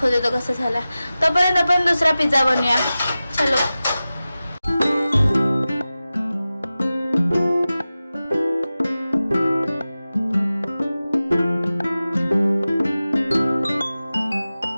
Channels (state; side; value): inverted; both; correlation -0.95